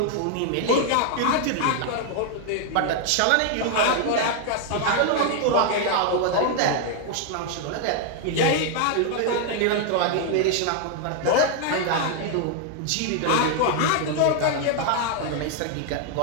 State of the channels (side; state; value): both; different; correlation 0.00